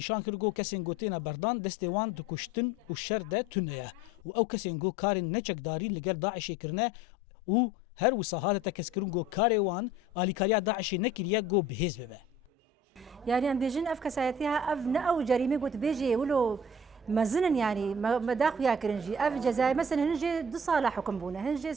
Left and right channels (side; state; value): both; normal; correlation 0.48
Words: کرگو کسین گو تین بردان دستوان دکشتن و شر ده تنه و او کسین گو کارین نچکداری لگر داعش کرنه و هر وساهات تکسکرون گو کاروان الیکاریا داعش نکریه گو بهز ببه يعني ام بيجن اف كسايتها اف نأو جريمه قلت بيجي ولو مزنن يعني مداخ يا كرنجي اف جزاء مثلا هنجي 2 صالح حكم بونا هنجي